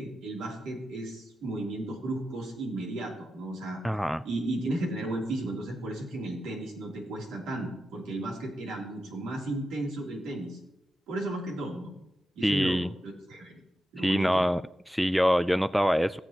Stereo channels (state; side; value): normal; both; correlation 0.90